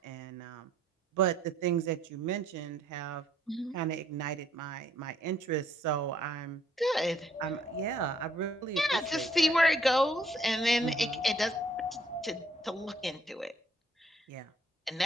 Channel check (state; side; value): normal; both; correlation 0.65